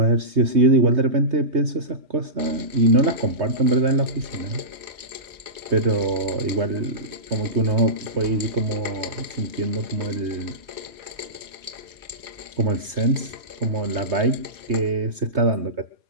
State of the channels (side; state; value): left; late; 3.2 ms